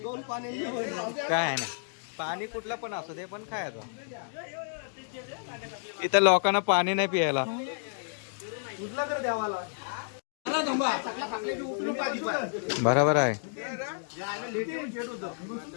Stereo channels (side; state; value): right; silent; digital silence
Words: काय ना पाणी कुठलं पण असू दे, पण खायचं. इथं लोकांना पाणी नाही पियायला. बरोबर आहे.